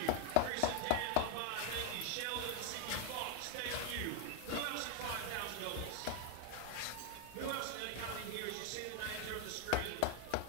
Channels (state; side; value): different; both; correlation 0.00